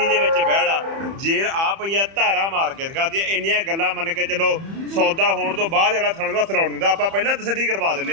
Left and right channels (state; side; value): late; left; 30 ms